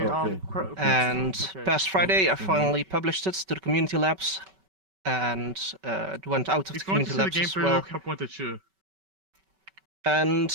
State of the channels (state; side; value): late; left; 5.2 ms